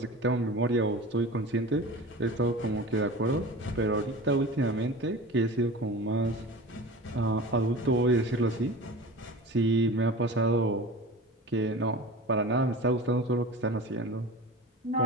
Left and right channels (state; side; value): normal; both; correlation 0.35